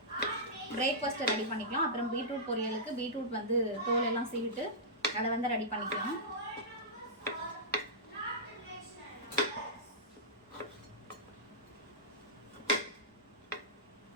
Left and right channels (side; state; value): both; normal; correlation -0.15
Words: பிரேக்ஃபாஸ்ட்டை ரெடி பண்ணிக்கலாம். அப்புறம் பீட்ரூட் பொரியலுக்கு பீட்ரூட் வந்து தோல் எல்லாம் சீவிட்டு அதை வந்து ரெடி பண்ணிக்கலாம்.